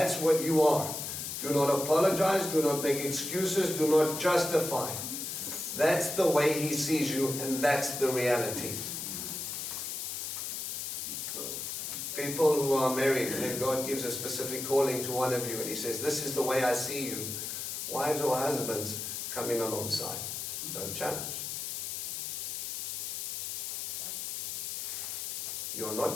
what you are. Do not apologize, do not make excuses, do not justify. That's the way he sees you, and that's the reality. People who are married, and God gives a specific calling to one of you, and he says, this is the way I see you. Wives or husbands, come in alongside. Don't challenge. You're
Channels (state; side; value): noise; left; hiss, 4 dB below the sound